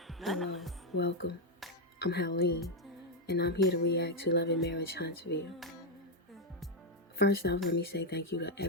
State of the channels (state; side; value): normal; both; correlation 0.02